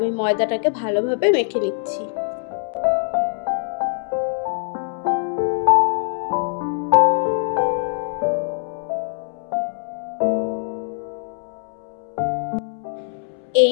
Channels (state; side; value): silent; right; 64 dB below the other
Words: ময়দাটাকে ভালোভাবে মেখে নিচ্ছি।